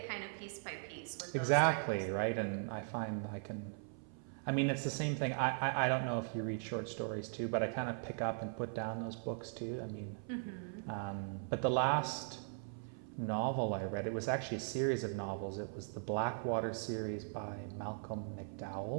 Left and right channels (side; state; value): left; silent; 52 dB below the other